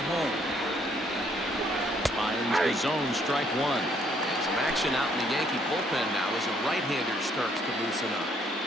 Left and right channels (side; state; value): both; normal; correlation 0.67